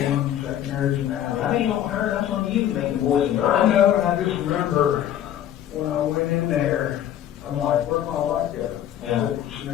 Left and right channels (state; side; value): quieter; right; 11.1 dB